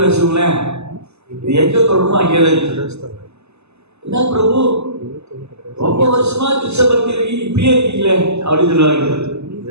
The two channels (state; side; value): late; left; 0.80 ms